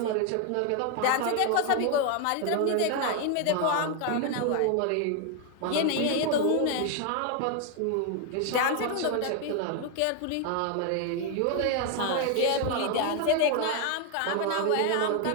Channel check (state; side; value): different; both; correlation 0.01